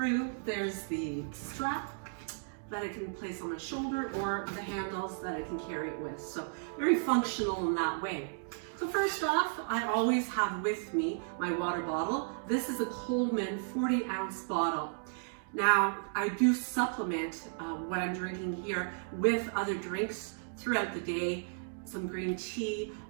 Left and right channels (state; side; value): silent; left; digital silence